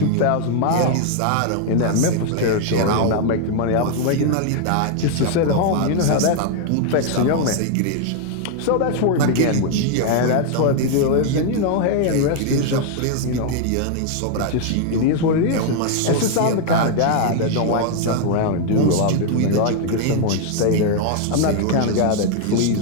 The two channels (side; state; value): both; different; correlation 0.00